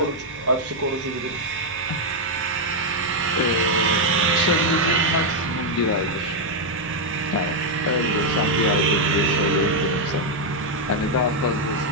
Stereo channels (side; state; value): both; normal; correlation 0.00